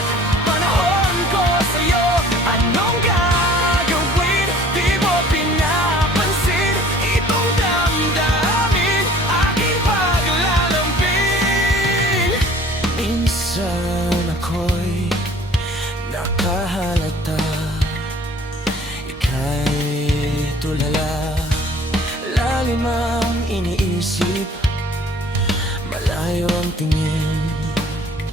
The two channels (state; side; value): normal; both; correlation 0.51